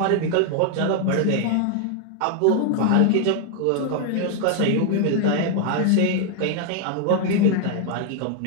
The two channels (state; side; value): different; both; correlation 0.00